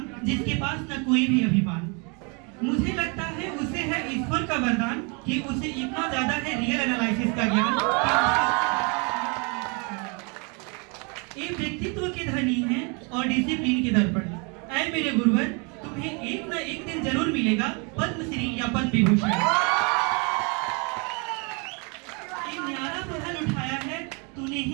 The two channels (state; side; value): quieter; left; 33.0 dB